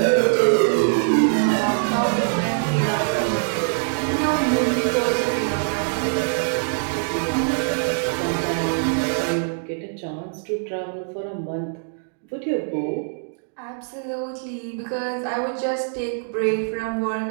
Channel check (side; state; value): left; silent; digital silence